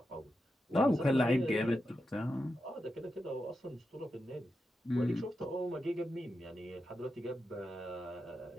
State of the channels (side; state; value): both; normal; correlation 0.88